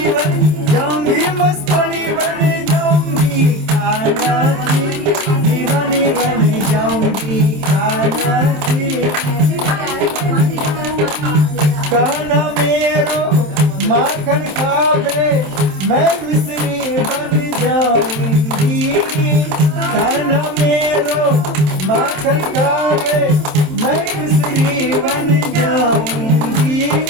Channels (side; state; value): left; late; 27 ms